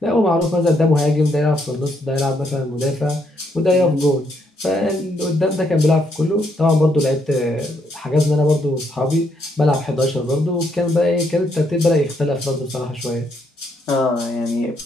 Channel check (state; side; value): normal; both; correlation 0.74